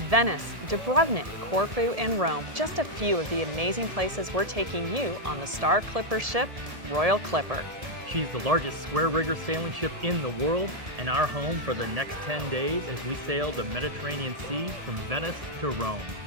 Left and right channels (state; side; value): late; left; 1.7 ms